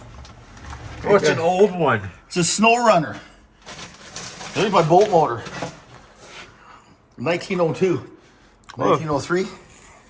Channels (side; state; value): both; identical; correlation 1.00